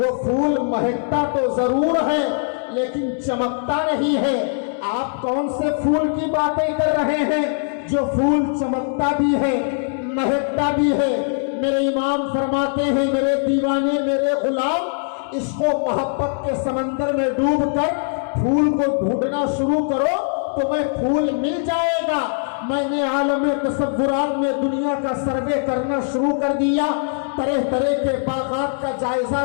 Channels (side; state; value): right; silent; digital silence